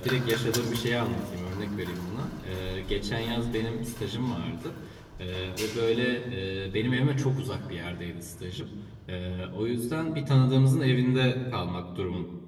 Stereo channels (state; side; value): identical; both; correlation 1.00